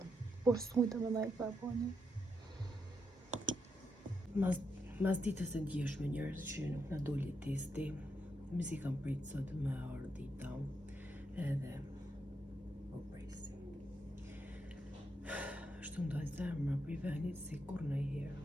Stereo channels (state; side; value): normal; both; correlation 0.82